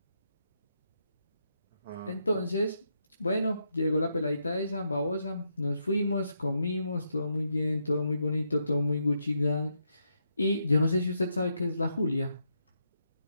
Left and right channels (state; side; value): inverted; both; correlation -0.80